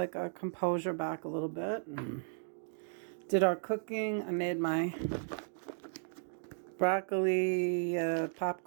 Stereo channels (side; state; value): left; silent; digital silence